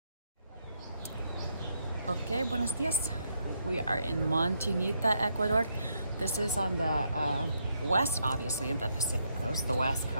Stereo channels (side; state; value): both; inverted; correlation -0.77